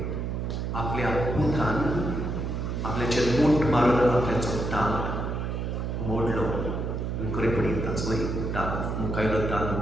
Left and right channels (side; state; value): right; noise; hum, 2 dB below the sound